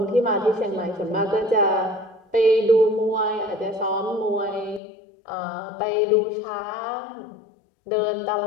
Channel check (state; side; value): drops out; right; at 4.8 s